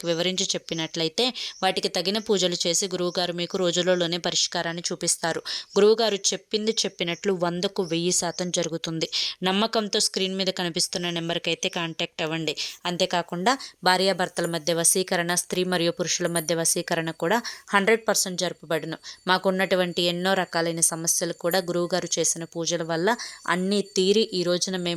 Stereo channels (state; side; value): identical; both; correlation 1.00